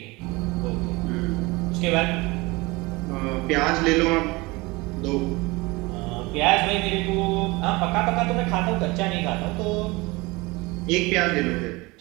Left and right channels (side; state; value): left; quieter; 23.6 dB